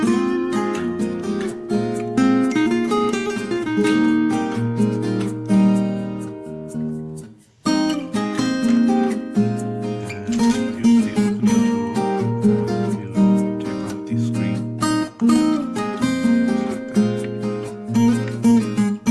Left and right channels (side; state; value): both; identical; correlation 1.00